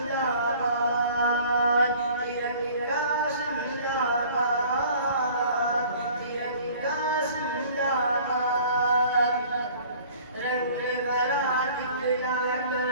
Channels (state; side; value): inverted; both; correlation -0.50